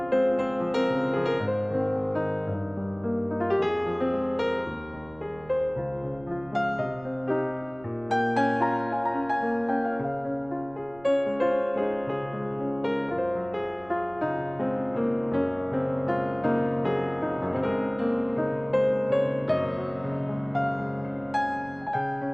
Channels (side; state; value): right; noise; rumble, 23 dB below the sound